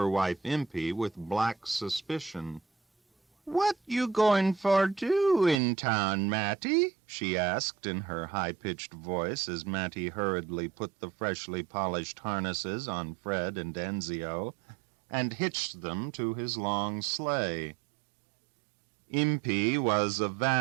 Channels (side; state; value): left; drops out; at 5.6 s